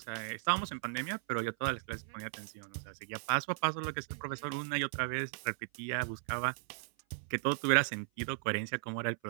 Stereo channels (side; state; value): left; silent; 54 dB below the other